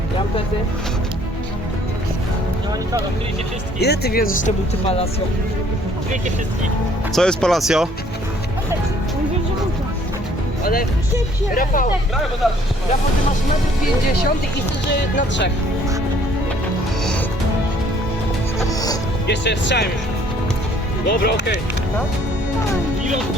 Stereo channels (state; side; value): normal; both; correlation 0.60